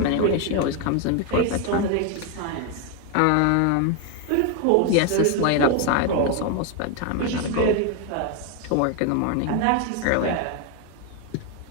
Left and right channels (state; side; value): different; both; correlation 0.01